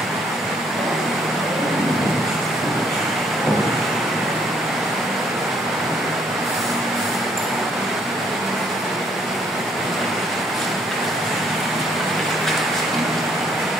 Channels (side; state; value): both; normal; correlation 0.67